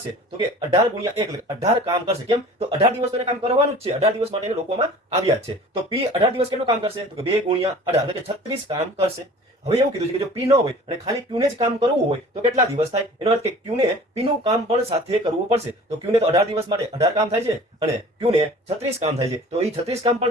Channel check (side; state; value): both; normal; correlation 0.45